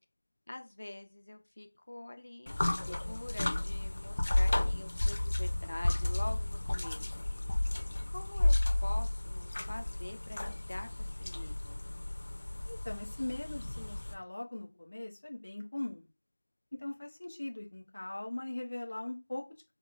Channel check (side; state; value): both; inverted; correlation -1.00